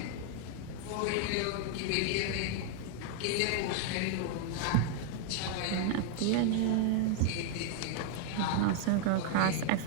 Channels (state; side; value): different; both; correlation 0.00